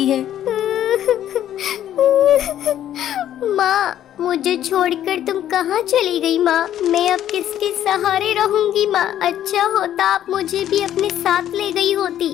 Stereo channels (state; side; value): quieter; right; 11.3 dB